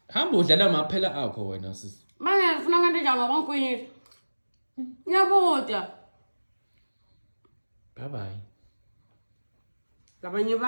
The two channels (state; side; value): inverted; both; correlation -1.00